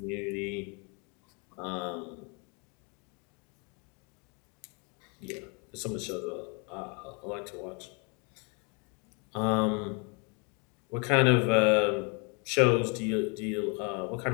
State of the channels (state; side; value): quieter; right; 34.5 dB